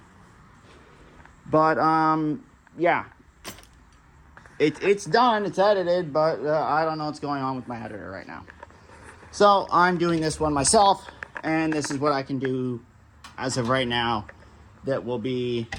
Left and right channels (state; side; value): identical; both; correlation 1.00